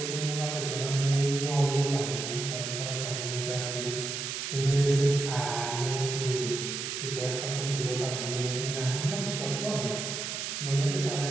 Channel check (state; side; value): noise; right; hiss, 4 dB below the sound